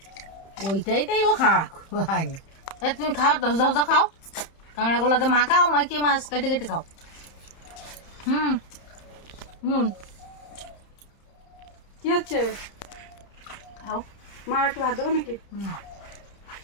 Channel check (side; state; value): right; late; 30 ms